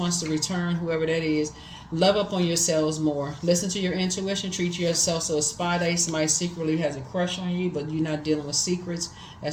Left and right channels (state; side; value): identical; both; correlation 1.00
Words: to return, whoever that is. Love up on yourselves more. Listen to your intuition. Treat yourself so a spy day. Somebody secretly has a crush on you, but you're not dealing with secrets.